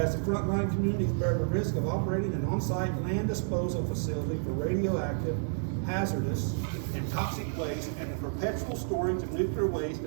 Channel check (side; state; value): left; silent; digital silence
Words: the frontline communities bear the risk of operating an on-site land disposal facility for radioactive, hazardous, and toxic waste and the perpetual storage of nuclear waste